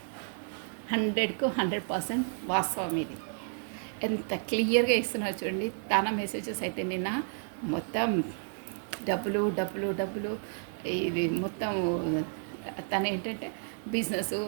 100కు 100% వాస్తవం. ఇది ఎంత క్లియర్గా ఇస్తున్నారు చూడండి. తన మెసేజెస్ అయితే నిన్న మొత్తం డబ్బులు డబ్బులు డబ్బులు, ఇది మొత్తం తన ఏంటంటే బిజినెస్,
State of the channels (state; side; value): silent; left; 57 dB below the other